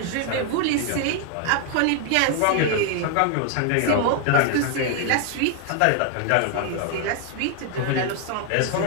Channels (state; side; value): different; both; correlation 0.00